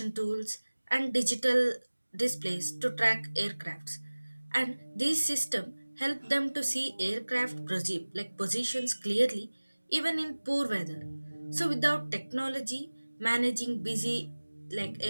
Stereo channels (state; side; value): inverted; both; correlation -1.00